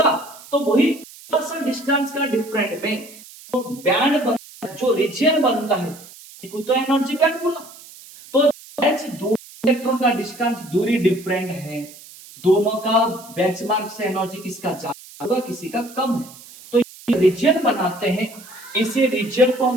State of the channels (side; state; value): right; noise; hiss, 19 dB below the sound